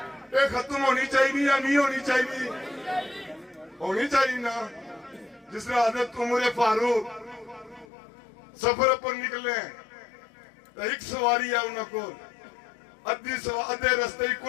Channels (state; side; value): drops out; right; at 7.9 s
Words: یہ ختم ہونی چاہیے یا نہیں ہونی چاہیے؟ ہونی چاہیے نا۔ جس نے حضرت عمر فاروق سفر پر نکلے تو ایک سواری ہے انہوں کو ادھے رستے